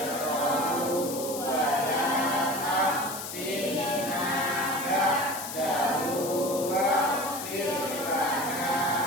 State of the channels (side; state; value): left; noise; hiss, 8 dB below the sound